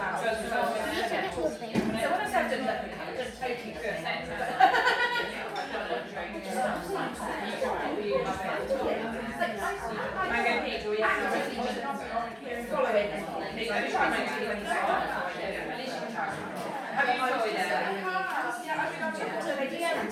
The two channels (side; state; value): both; identical; correlation 1.00